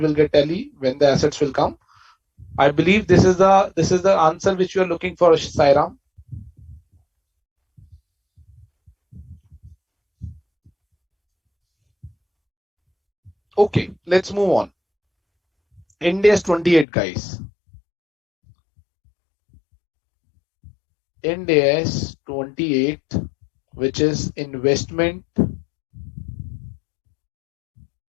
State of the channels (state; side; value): drops out; right; at 16.9 s